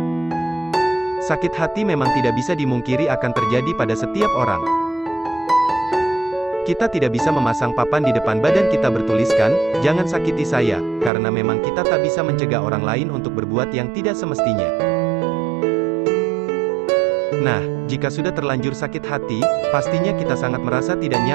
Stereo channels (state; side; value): drops out; left; at 11.1 s